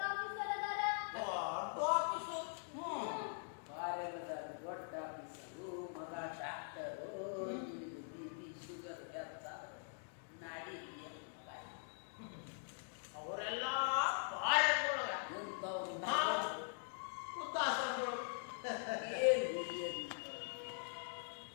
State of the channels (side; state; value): right; silent; digital silence